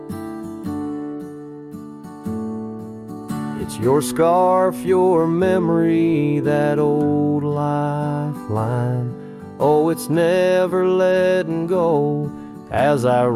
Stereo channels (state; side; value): identical; both; correlation 1.00